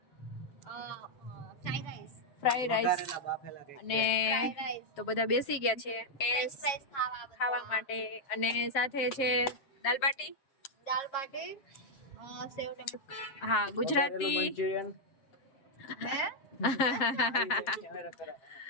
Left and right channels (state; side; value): late; right; 7.5 ms